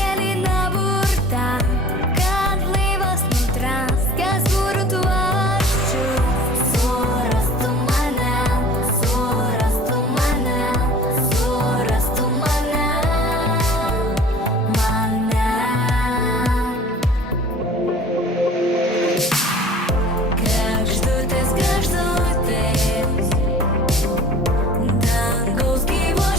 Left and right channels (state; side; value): normal; both; correlation 0.45